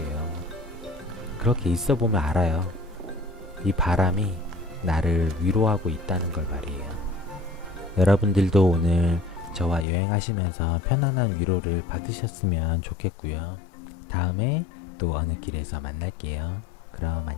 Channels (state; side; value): drops out; right; at 9.9 s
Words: 그렇게 있어 보면 알아요. 이 바람이 나를 위로하고 있다는 걸 말이에요. 여러분들도 오늘 저와 여행하시면서 편안한 위로를 받으셨으면 좋겠고요. 다음에 또 어느 길에서 만날게요. 그럼